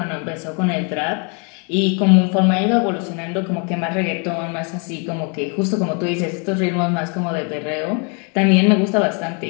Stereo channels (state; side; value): quieter; right; 36.1 dB